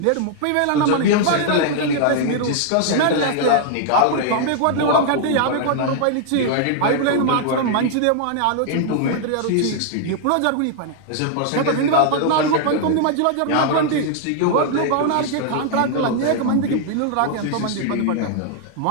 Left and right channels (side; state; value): both; different; correlation -0.01